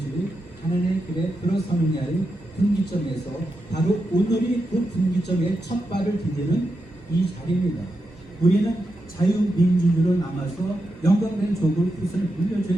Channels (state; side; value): normal; both; correlation 0.87